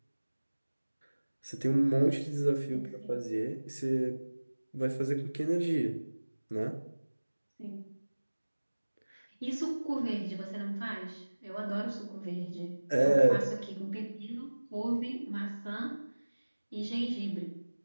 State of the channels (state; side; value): inverted; both; correlation -1.00